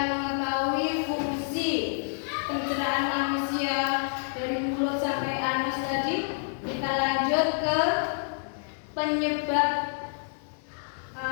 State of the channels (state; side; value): silent; right; 59 dB below the other